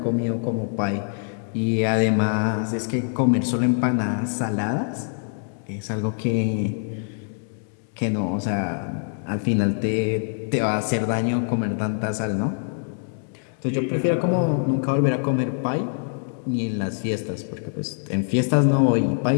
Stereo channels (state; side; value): silent; right; digital silence